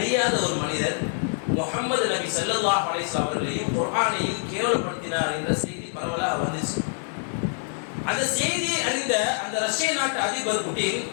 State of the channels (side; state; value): right; silent; digital silence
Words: ஒரு மனிதர் முஹம்மது நபி ஸல்லல்லாஹு அலைஹி வஸல்லம் அவர்களையும் குர்ஆனையும் கேவலப்படுத்தினார் என்ற செய்தி பரவலாக வந்துச்சு. அந்த செய்தியை அறிந்த அந்த ரஷ்ய நாட்டு அதிபர் புட்டின்